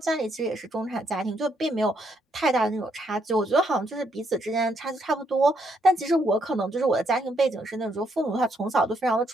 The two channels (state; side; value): normal; both; correlation 0.74